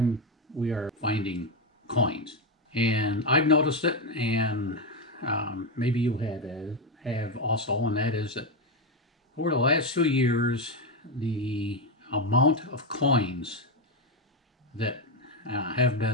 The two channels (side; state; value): both; normal; correlation 0.09